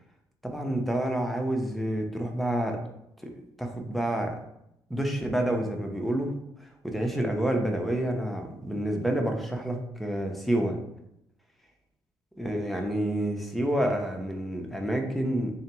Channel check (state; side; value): normal; both; correlation 0.85